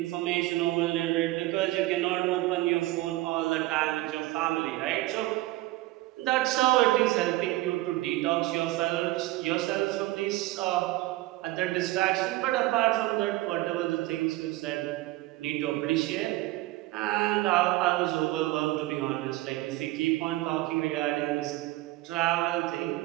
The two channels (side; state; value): left; quieter; 18.2 dB